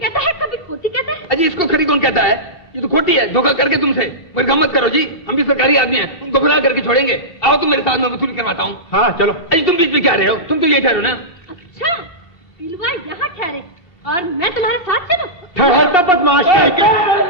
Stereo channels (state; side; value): late; right; 2.7 ms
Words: है, कभी खोटी कहता है। अजी इसको खरी कौन कहता है? ये तो खोटी है, धोखा करके तुमसे। मगर गम मत करो जी, हम भी सरकारी आदमी हैं, उनको गुमराह करके छोड़ेंगे। आओ तुम मेरे साथ, में वसूली करवाता हूँ। हाँ चलो। अजी तुम बीच में क्या रहे हो? तुम तो ये ठहरो ना। अच्छा, बिलवा यहाँ ठहरे और मैं तुम्हारे साथ चलूं? ठहरता बदमाश के।